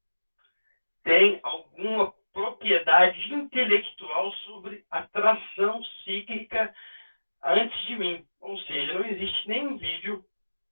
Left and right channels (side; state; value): both; inverted; correlation -1.00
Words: tem alguma propriedade intelectual sobre a tração cíclica antes de mim. Ou seja, não existe nenhum vídeo,